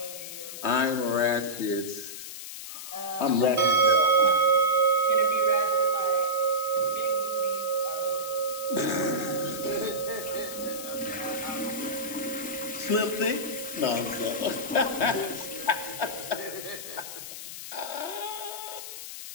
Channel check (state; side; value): noise; left; hiss, 10 dB below the sound